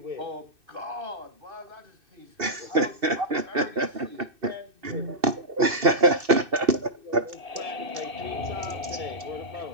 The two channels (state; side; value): late; left; 2.6 ms